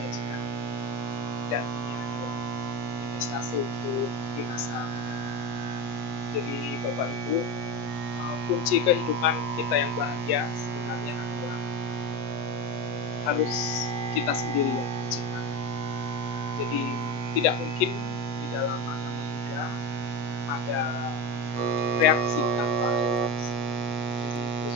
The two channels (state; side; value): late; right; 8.0 ms